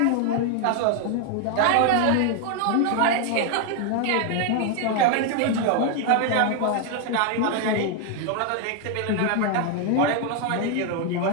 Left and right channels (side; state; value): both; different; correlation 0.01